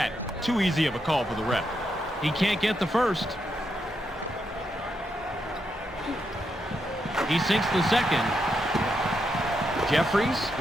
Too easy of a call for the ref. He can't get the first. He sinks the second. Jeffries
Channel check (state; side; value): normal; both; correlation 0.82